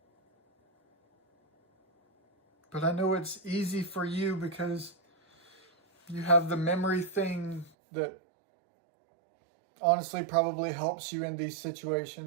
But I know it's easy for you because you have the memory thing that honestly probably helps you in these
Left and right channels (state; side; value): drops out; left; at 7.7 s